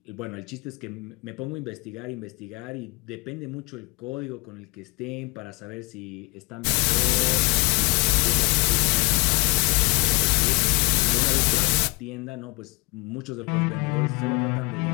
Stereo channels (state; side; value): quieter; right; 28.5 dB